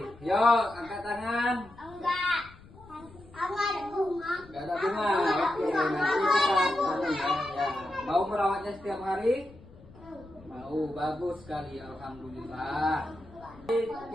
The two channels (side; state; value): left; noise; rumble, 22 dB below the sound